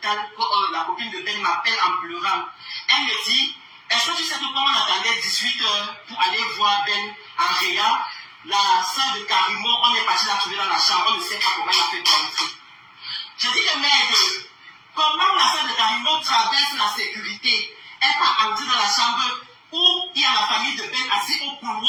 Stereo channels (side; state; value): both; identical; correlation 1.00